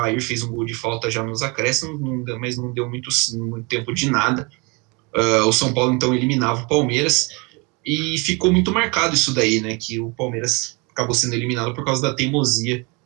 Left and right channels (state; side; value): quieter; left; 29.1 dB